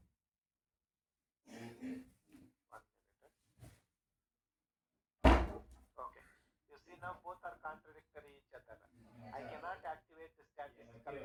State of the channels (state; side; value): identical; both; correlation 1.00